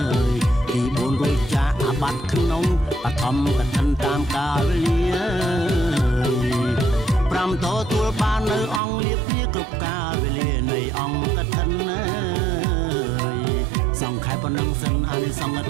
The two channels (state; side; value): drops out; left; at 8.8 s